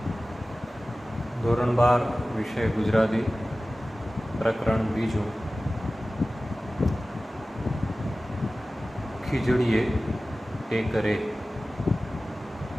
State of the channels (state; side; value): normal; both; correlation 0.96